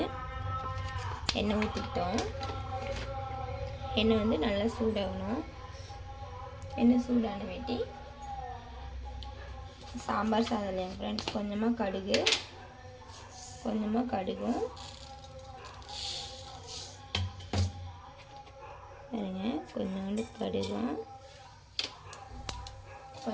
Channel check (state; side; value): identical; both; correlation 1.00